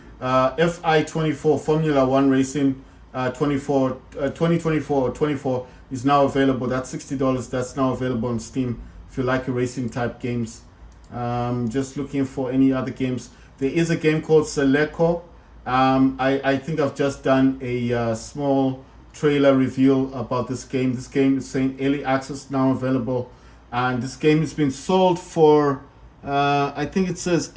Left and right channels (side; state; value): both; identical; correlation 1.00